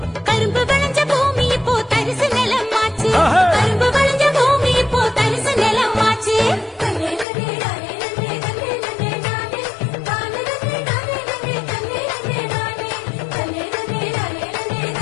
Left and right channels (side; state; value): right; drops out; at 7.2 s